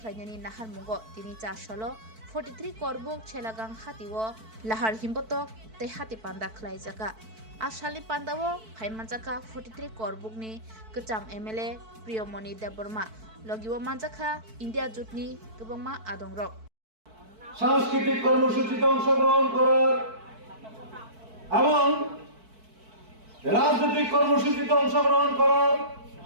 Nahar Mungo Tini Chashalo 43 Korbuk Chelagang Hatiwo Lahar Himbotok Te Hati Panda Klaizaka Ashali Pandawo Haimanjaka 43 Korbukni Kecham MLA Priyomoni Deborma Logiwo Manjaka India Jutni Kebangma Adongrok সাংস্কৃতিক কর্মসূচিতে অংশগ্রহণ করার এবং রাজনৈতিক কর্মসূচিতে অংশগ্রহণ করার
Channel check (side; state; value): left; late; 4.5 ms